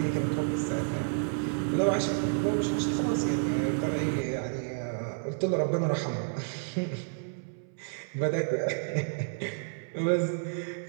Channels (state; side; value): silent; left; 58 dB below the other